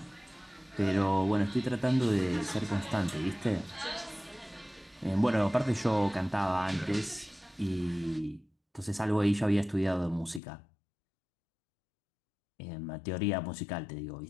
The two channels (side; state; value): right; drops out; at 10.4 s